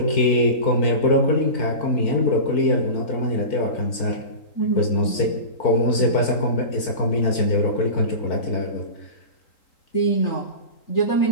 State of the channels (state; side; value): late; right; 4.6 ms